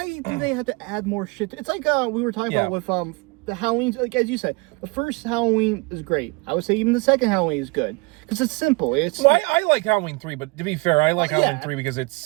do they have to add more shit? It's like we were talking about with the Halloween, like as you said, the first Halloween is great. I would say even the second Halloween is good because it's simple. I like Halloween 3, but to be fair, I like Halloween 3 because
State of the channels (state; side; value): quieter; left; 27.2 dB